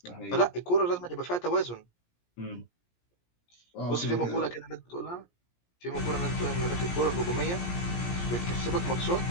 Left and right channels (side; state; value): right; late; 17 ms